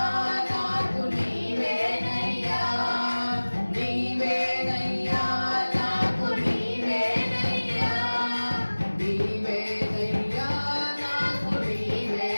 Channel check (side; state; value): both; inverted; correlation -1.00